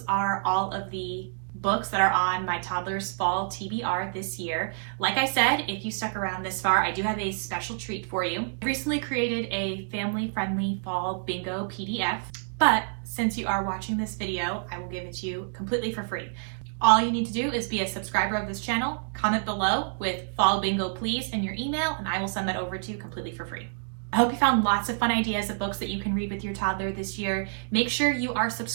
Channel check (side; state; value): left; silent; digital silence